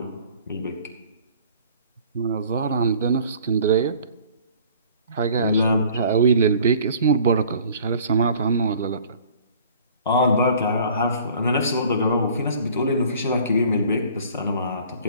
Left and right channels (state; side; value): inverted; both; correlation -0.51